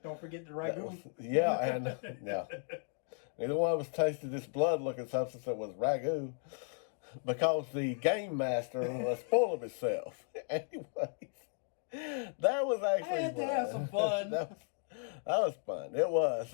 Don't forget the ragu. Yeah, and no. Neither one of us tasted this blood looking substance that was ragu because the game master was full of himself. Anyways, that was actually I had to have some fun. that was fun. It was.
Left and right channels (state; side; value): silent; right; 54 dB below the other